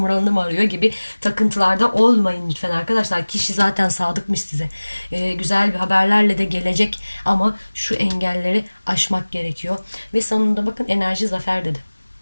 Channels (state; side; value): inverted; both; correlation -1.00